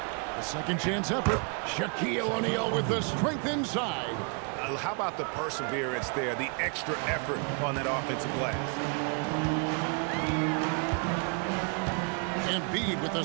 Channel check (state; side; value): quieter; left; 37.5 dB